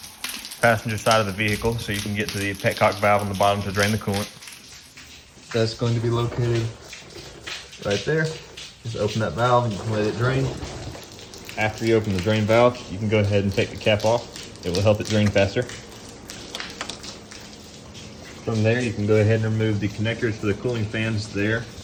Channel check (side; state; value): both; identical; correlation 1.00